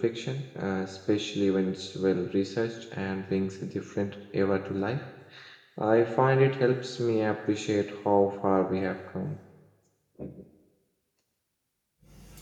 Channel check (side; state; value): both; identical; correlation 1.00